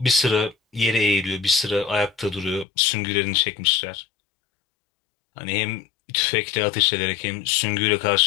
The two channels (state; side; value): drops out; right; at 2.7 s